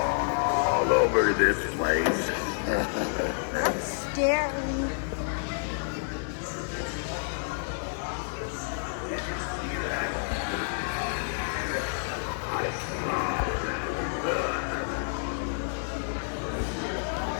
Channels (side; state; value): right; silent; 58 dB below the other